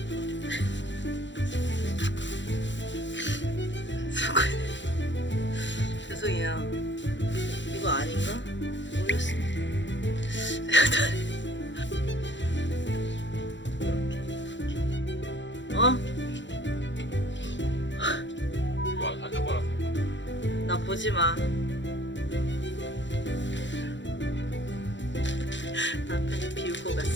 죄송해요. 이거 아닌가? 모르겠습니다. 어? 와, 사진 봐라. 나 보지 마. 남편이 비우고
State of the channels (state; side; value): late; right; 0.53 ms